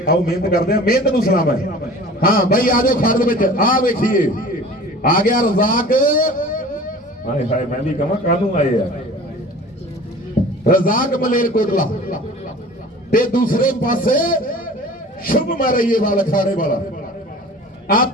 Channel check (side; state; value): both; normal; correlation 0.42